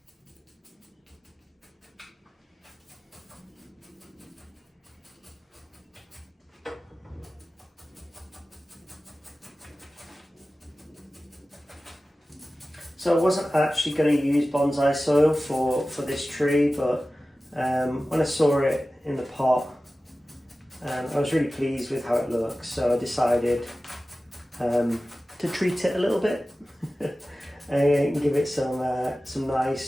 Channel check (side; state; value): both; normal; correlation 0.96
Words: So I wasn't actually going to use bonsai soil for this tree, but when I saw it in the pot, I was really pleased with how it looks, so I decided to treat it a little bit and give it some